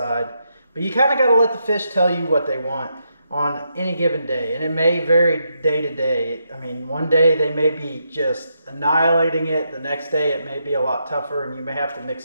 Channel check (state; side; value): inverted; both; correlation -0.81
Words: But you kind of got to let the fish tell you what they want on any given day, and it may vary day to day. I mean, one day they may be just annihilating it, the next day it may be a lot tougher, and you may have to mix